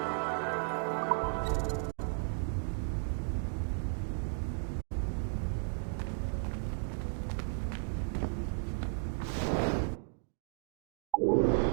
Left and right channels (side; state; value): left; silent; digital silence